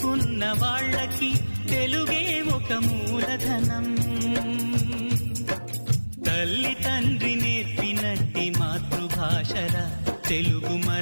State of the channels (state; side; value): inverted; both; correlation -1.00